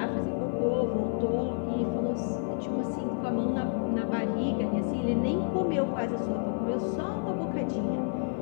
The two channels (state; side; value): silent; right; 58 dB below the other